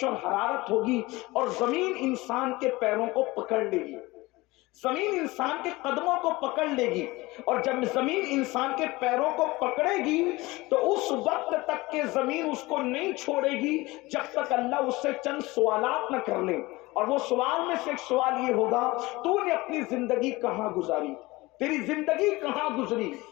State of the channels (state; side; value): quieter; right; 21.3 dB